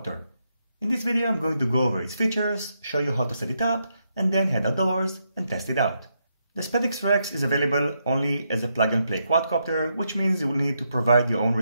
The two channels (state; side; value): inverted; both; correlation -0.80